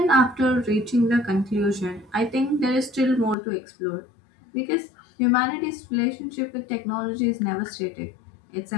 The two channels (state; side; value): drops out; right; at 3.4 s